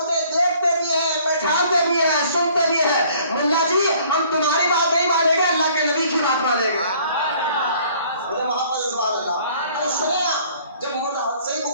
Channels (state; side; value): inverted; both; correlation -0.57